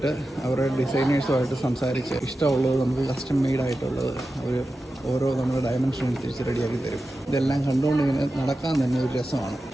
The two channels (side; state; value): both; normal; correlation 0.92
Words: അവരുടെ ഡിസൈനേഴ്സുമായിട്ട് സംസാരിച്ച് ഇഷ്ടമുള്ളത് നമുക്ക് കസ്റ്റം മെയ്ഡായിട്ടുള്ളത് അവർ ഓരോ നമ്മുടെ ഡയമെൻഷൻ അനുസരിച്ച് റെഡിയാക്കി തരും. ഇതെല്ലാം കണ്ടുകൊണ്ട് ഇങ്ങനെ നടക്കാൻ തന്നെ ഒരു രസമാണ്.